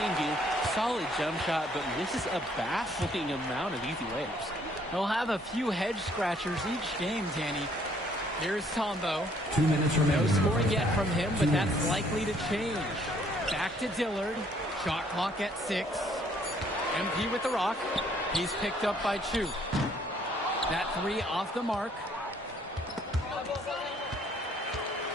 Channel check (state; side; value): normal; both; correlation 0.64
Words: Solid jump shot, but misses a baffling amount of easy layups. They'll have a few head scratchers each game, Danny. Here's Tombo. 2 minutes remaining. No scoring yet from him, but that's likely to change. Back to Dillard. Shot clock at 6. MP with the rock. He's picked up by Chu. That three off the mark.